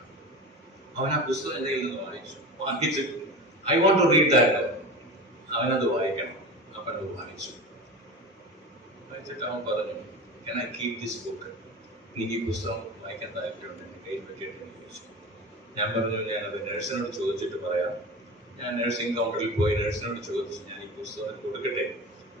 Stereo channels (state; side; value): normal; both; correlation 0.30